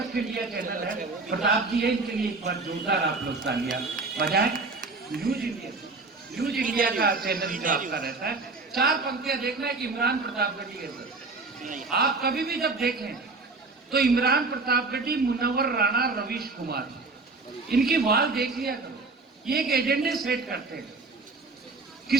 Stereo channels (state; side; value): quieter; left; 3.7 dB